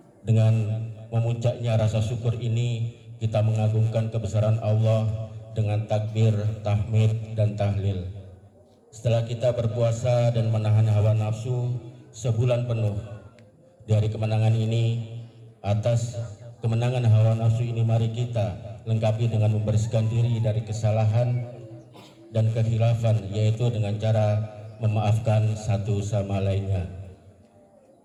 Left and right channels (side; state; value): both; identical; correlation 1.00